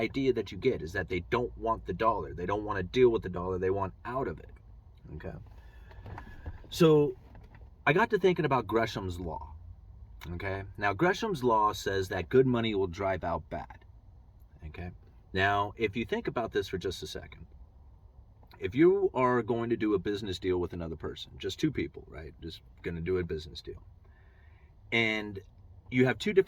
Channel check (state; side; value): identical; both; correlation 1.00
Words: that you get, is that they don't want the dollar. They don't want to deal with the dollar. They want out of it. Okay. So I got to thinking about Gresham's Law. Okay. Now, Gresham's Law says that good money will drive out bad. Okay. Now, if you think about this for just a second, if you are going to do a business deal with another person, just two people, right? Just going to do a business deal. And you have two